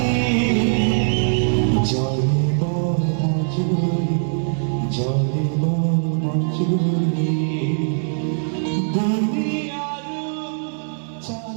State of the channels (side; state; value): left; silent; digital silence